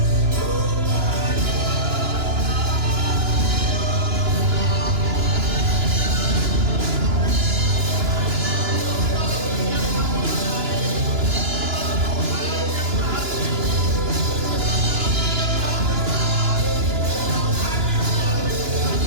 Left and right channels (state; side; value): late; left; 2.9 ms